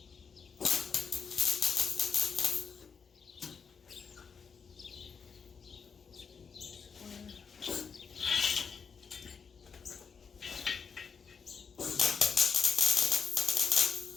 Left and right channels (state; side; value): quieter; right; 6.0 dB